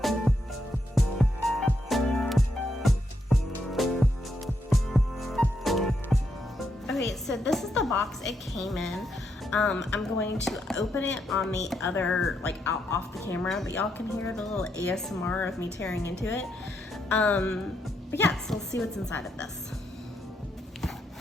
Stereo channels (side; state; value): both; normal; correlation 0.79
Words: Okay, so this is the box it came in. I'm going to open it on the other, out off the camera, but y'all can hear the little ASMR of me tearing into it. But yeah, so let's see what's inside of this.